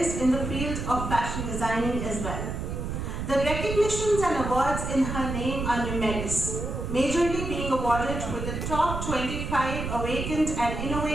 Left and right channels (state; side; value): noise; right; rumble, 4 dB below the sound